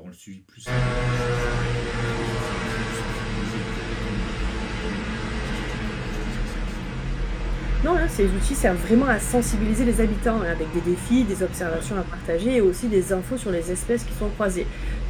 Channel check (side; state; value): both; identical; correlation 1.00